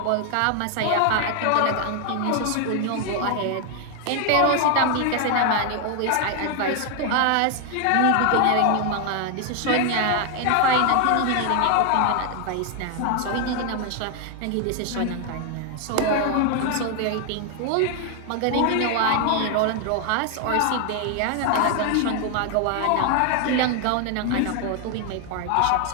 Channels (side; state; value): both; different; correlation 0.00